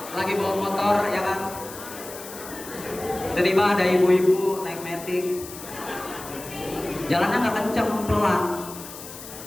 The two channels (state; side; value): noise; left; hiss, 13 dB below the sound